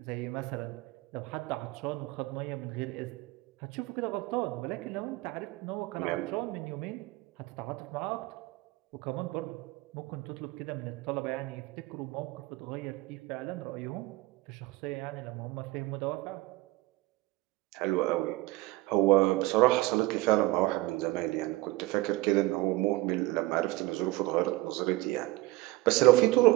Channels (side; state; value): left; quieter; 19.4 dB